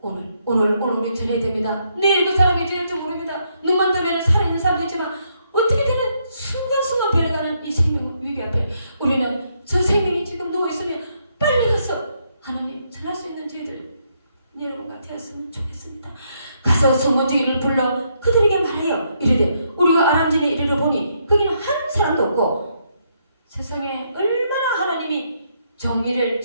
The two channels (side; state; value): both; inverted; correlation -0.75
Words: 오늘 우리 전해야 됩니다. 내일 그 사람이 될지 모릅니다. 눈만 뜨면 살아있는 사람도 있지만 어떻게 되는 순간순간 변해가는 이 생명 위기 앞에 우리는 저 생명이 지금 누워있으면 빨리 가서 하나님 전할 수 있는 저희들 여러분과 되었으면 좋겠습니다. 가서 소문지기를 불러 그들에게 말하여 이르되 우리가 아람진에 이르러 보니 거기는 한 사람도 없고 세상에 얼마나 하나님이 정의를